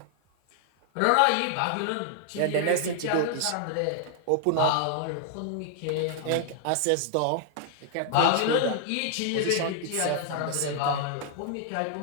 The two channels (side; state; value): both; different; correlation 0.00